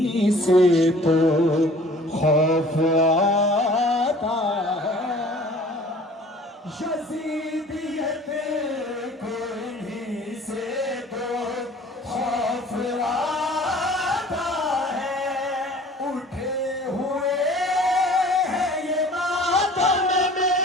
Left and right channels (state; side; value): normal; both; correlation 0.49